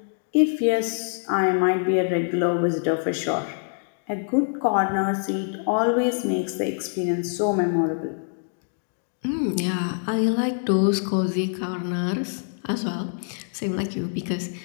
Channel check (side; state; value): right; silent; digital silence